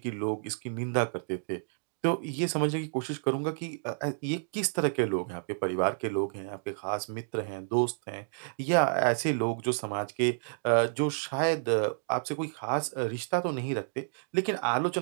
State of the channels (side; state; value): left; silent; digital silence